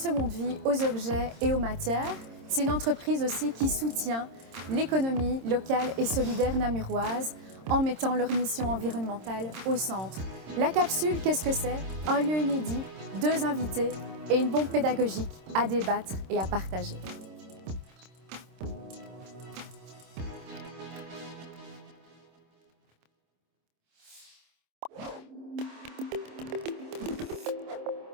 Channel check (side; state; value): left; late; 26 ms